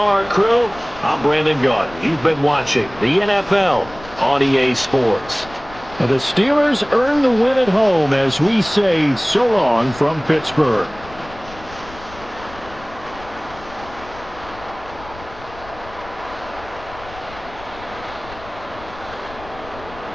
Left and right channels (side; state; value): left; noise; rumble, 18 dB below the sound